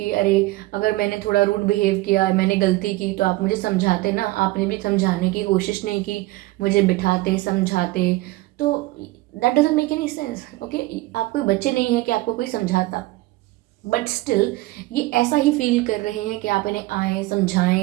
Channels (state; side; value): quieter; left; 19.4 dB